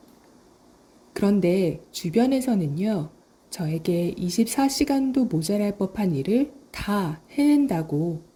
그런데 주변에서는요, 저에게 24시간도 모자랄 법한 일을 다 해낸다고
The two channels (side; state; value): both; identical; correlation 1.00